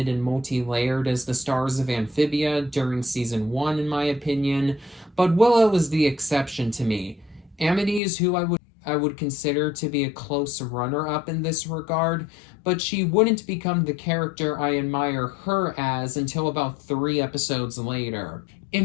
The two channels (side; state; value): right; drops out; at 8.0 s